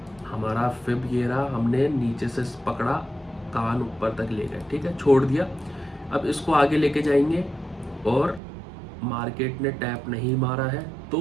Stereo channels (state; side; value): drops out; left; at 8.4 s